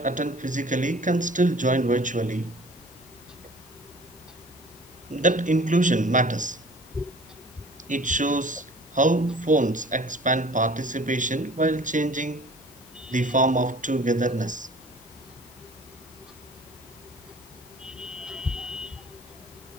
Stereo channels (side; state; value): both; normal; correlation 0.47